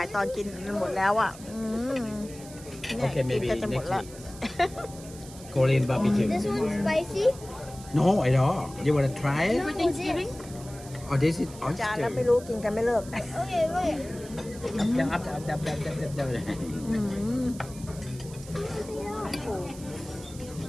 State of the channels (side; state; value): right; noise; hiss, 18 dB below the sound